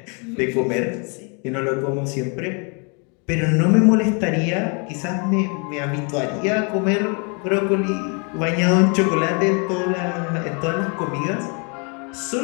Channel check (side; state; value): right; quieter; 35.2 dB